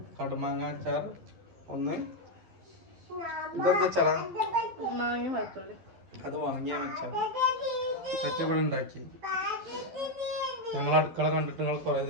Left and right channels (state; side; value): late; left; 12 ms